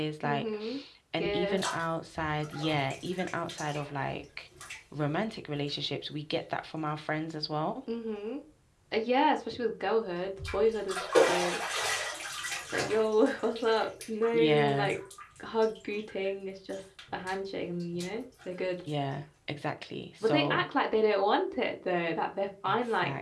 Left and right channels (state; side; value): identical; both; correlation 1.00